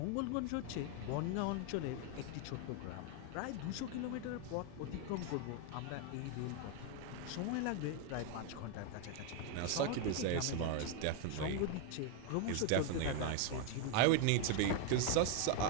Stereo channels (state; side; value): different; both; correlation 0.01